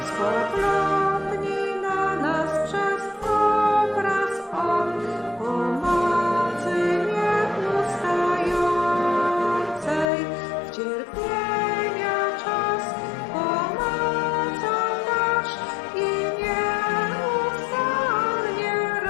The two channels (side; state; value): right; drops out; at 10.1 s